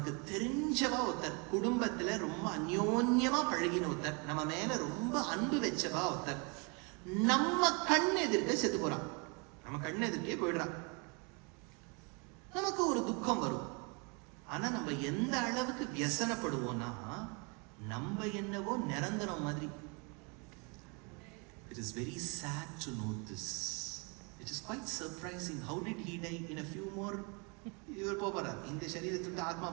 தெரிஞ்சவா ஒருத்தர், குடும்பத்துல ரொம்ப அந்யோன்யமா பழகின ஒருத்தர், நம்ம மேல ரொம்ப அன்பு வச்சவா ஒருத்தர் நம்ம கண் எதிர்க்க செத்து போறான். நம்ம கண் எதிர்க்கே போயிடுறான். நமக்கு ஒரு துக்கம் வரும். ஆனா நம்ம எந்த அளவுக்கு வியசனப்படுவோம்னா, நம்ம என்னவோ நிரந்தரம் மாதிரி. It is very sad to note this. It is quite surprising. How did he die? In a few more இவர் போறார், இந்த சரீரத்துக்கு ஆத்மா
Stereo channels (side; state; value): left; quieter; 32.5 dB